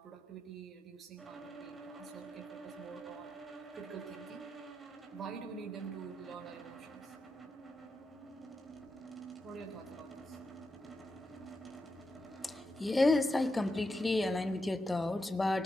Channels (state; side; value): normal; both; correlation 0.87